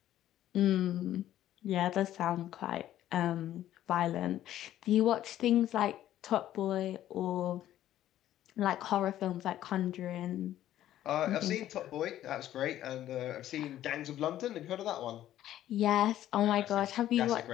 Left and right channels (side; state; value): right; quieter; 12.6 dB